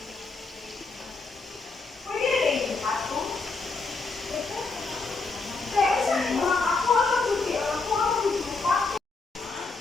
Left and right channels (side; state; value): right; quieter; 4.0 dB